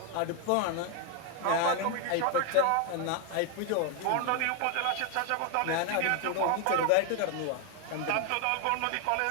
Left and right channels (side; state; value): both; different; correlation 0.01